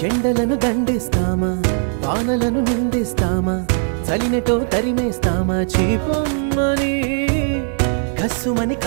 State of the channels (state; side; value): silent; left; 65 dB below the other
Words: ఎండలను దండిస్తామా, వానలను నిందిస్తామా, చలినటో తరిమేస్తామా, చీపొమ్మని కస్సుమని